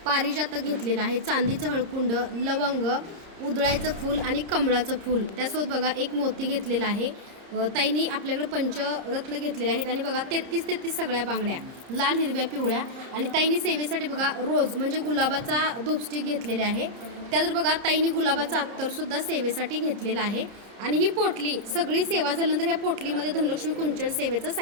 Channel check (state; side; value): late; left; 30 ms